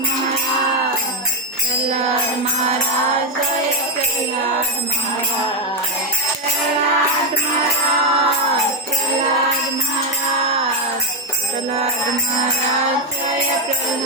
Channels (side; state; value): both; normal; correlation 0.04